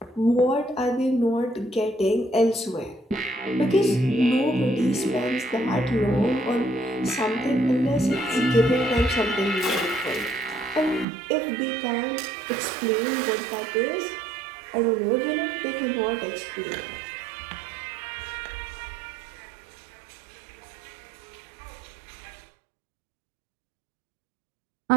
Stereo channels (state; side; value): drops out; left; at 11.1 s